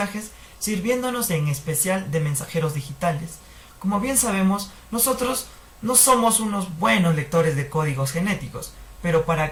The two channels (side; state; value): both; identical; correlation 1.00